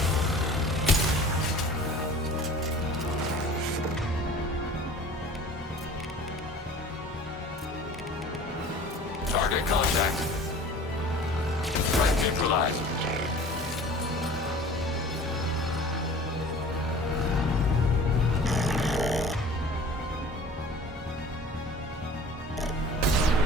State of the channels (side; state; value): both; normal; correlation 0.44